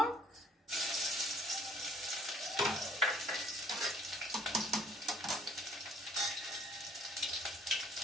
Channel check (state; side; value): normal; both; correlation 0.57